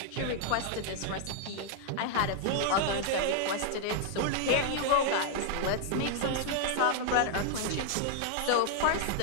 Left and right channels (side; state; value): both; different; correlation 0.00